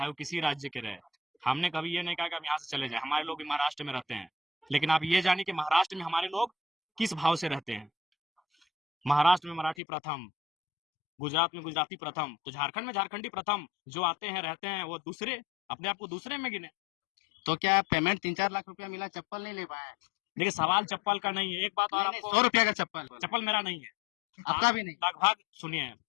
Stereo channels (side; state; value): right; drops out; at 9.8 s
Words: वो किसी राज्य के रहे। हमने कभी ये नहीं कहा कि हम यहाँ से चले जाए। हमारे लोग भी महाराष्ट्र में रहते हैं, लेकिन आप ये जानिए कि महाराष्ट्र में हमारे लोग किस भाव से रहते हैं। महाराष्ट्र में मराठी प्रथम, गुजरात में गुजराती प्रथम, तो झारखंड में झारखंडी प्रथम। जो आते हैं रहते हैं वो दूसरे, अपने आप को दूसरे में गिने। तो क्या पेमेंट 3-4 लाख रुपया मिला, चप्पल नहीं ले पाए? देखिए, सवाल चप्पल का नहीं है, एक बात और आपको, 100 रुपया का चप्पल। चप्पल मेरा नहीं है। आपका भी नहीं? लगभग सुनिए,